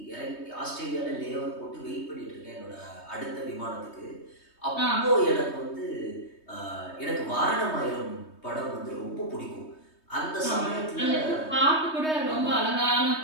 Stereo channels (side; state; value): right; late; 3.2 ms